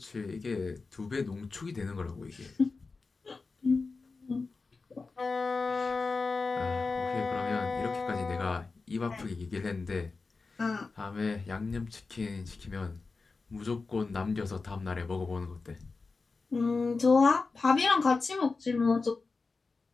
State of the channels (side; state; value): right; quieter; 4.1 dB